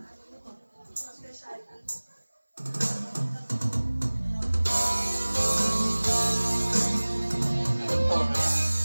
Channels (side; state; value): both; inverted; correlation -1.00